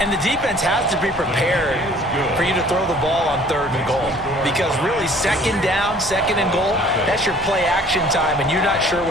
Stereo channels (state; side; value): normal; both; correlation 0.53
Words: And the defense has to be prepared for you to throw the ball on third and goal. Because really, second down, second and goal, that's your play action time, and you're not sure